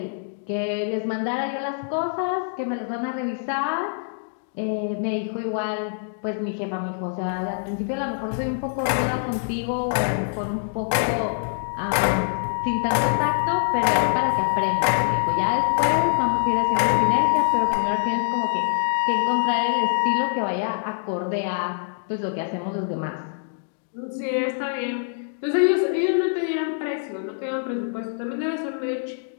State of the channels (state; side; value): silent; right; digital silence